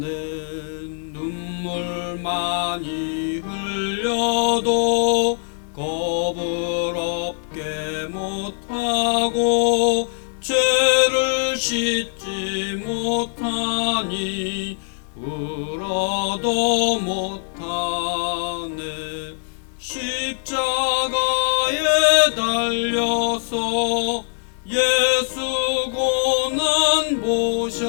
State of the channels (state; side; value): silent; right; 64 dB below the other